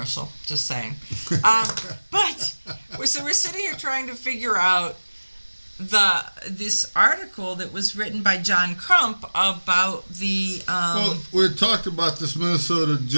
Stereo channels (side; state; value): both; inverted; correlation -1.00